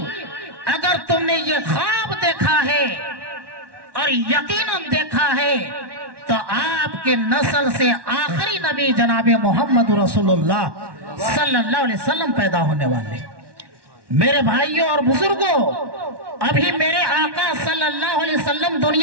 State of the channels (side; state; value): left; late; 1.2 ms